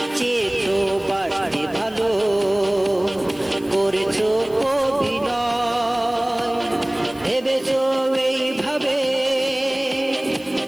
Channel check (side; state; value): left; noise; hiss, 24 dB below the sound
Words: চেয়েছো বাড়তে ভালো করেছো অভিনয়, ভেবেছো এইভাবে